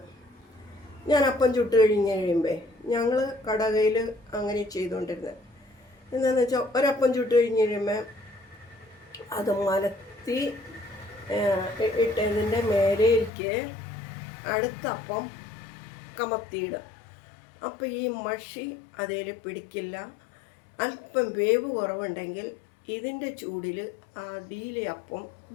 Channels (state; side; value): drops out; right; at 13.3 s